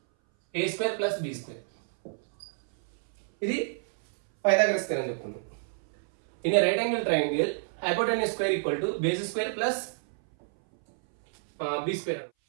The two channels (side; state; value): left; silent; 59 dB below the other